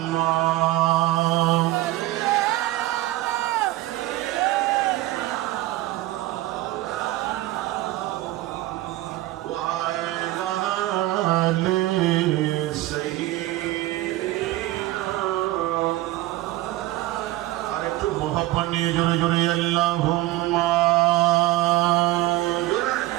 জোরে জোরে আল্লাহুম্মা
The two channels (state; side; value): quieter; left; 17.1 dB